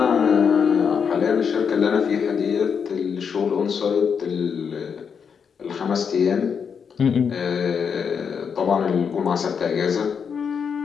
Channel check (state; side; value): quieter; right; 6.6 dB